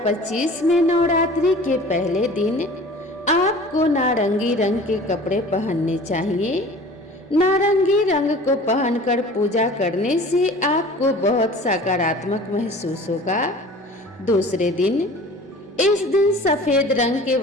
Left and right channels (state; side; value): normal; both; correlation 0.43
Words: में नवरात्रि के पहले दिन आपको नारंगी रंग के कपड़े पहनने चाहिए। नारंगी रंग को पहनकर पूजा करने से आपको बहुत सकारात्मक महसूस होगा। दूसरे दिन, इस दिन सफेद रंग के